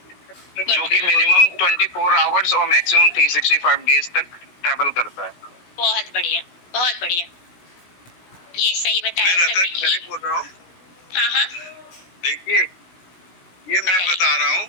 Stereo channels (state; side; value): late; right; 17 ms